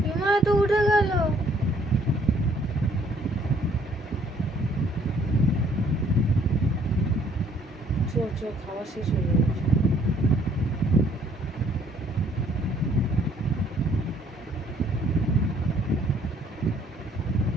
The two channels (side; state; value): both; normal; correlation 0.62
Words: বিমা তো উঠে গেল। খাওয়া শেষ হয়ে যাচ্ছে।